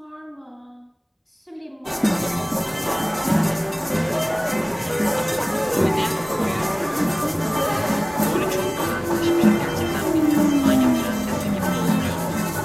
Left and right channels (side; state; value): both; identical; correlation 1.00